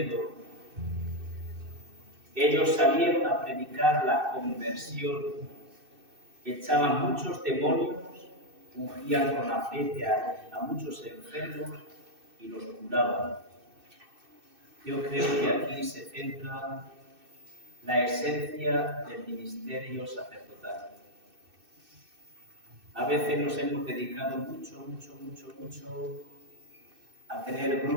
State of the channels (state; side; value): late; left; 2.6 ms